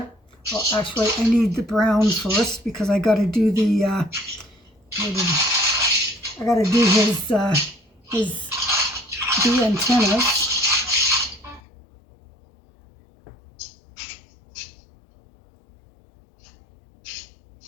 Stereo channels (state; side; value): drops out; right; at 11.6 s